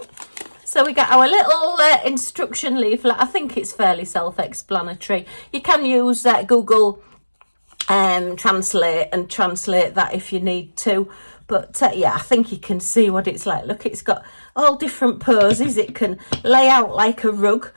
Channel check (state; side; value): inverted; both; correlation -1.00